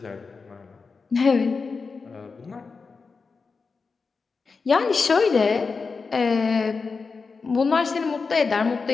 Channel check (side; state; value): right; quieter; 4.7 dB